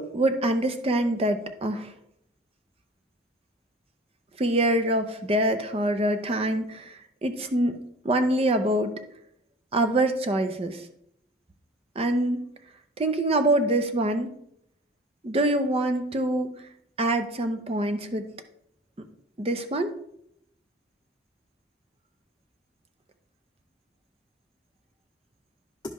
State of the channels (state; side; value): normal; both; correlation 0.43